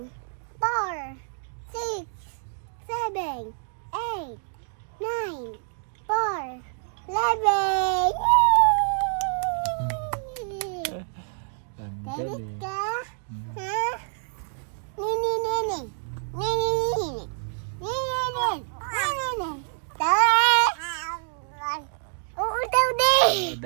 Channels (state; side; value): silent; left; digital silence